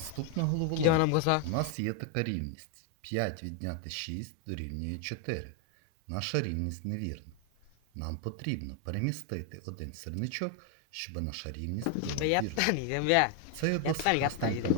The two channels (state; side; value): different; both; correlation 0.01